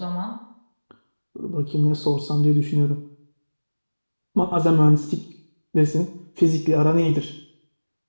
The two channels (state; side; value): inverted; both; correlation -1.00